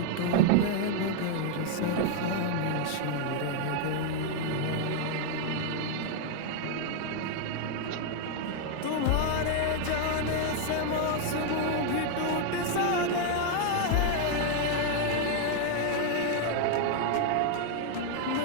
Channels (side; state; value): both; different; correlation 0.00